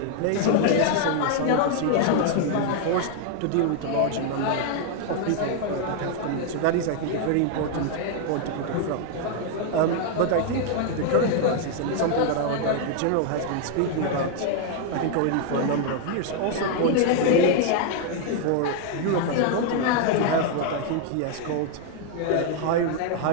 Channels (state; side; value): different; both; correlation 0.00